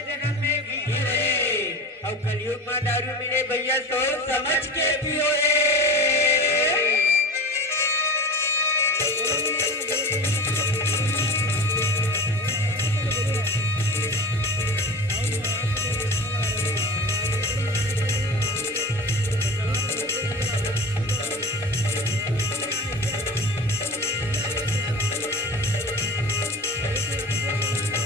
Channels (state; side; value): normal; both; correlation 0.33